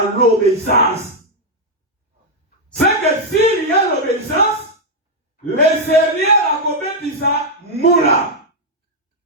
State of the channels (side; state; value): both; normal; correlation -0.01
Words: l'obéissance. C'est que s'il y a l'obéissance, les Seigneurs a commis ça moula.